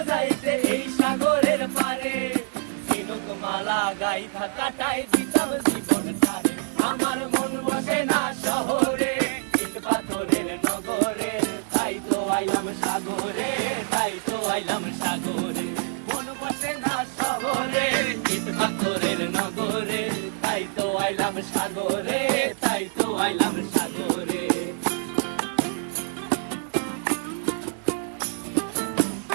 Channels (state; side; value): silent; left; 61 dB below the other